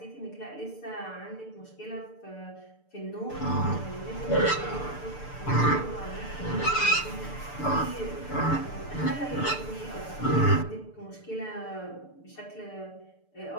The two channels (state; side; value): late; right; 6.8 ms